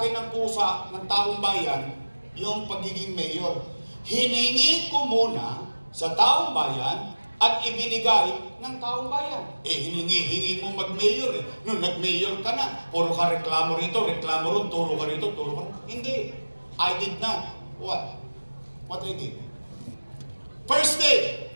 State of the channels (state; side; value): inverted; both; correlation -1.00